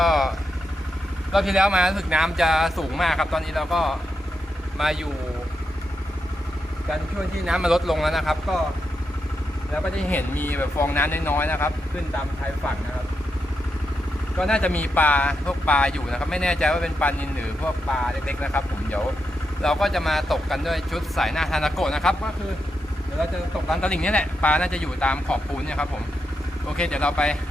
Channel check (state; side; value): normal; both; correlation 0.85